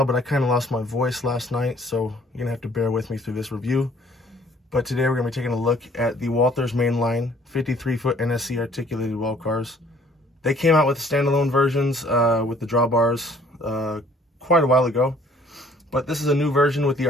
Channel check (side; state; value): both; normal; correlation 0.58